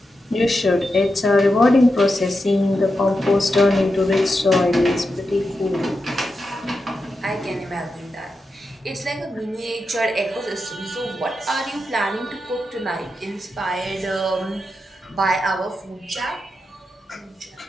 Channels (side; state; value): both; normal; correlation 0.88